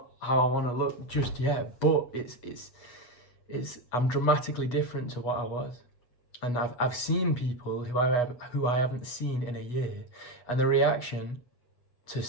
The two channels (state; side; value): late; right; 8.2 ms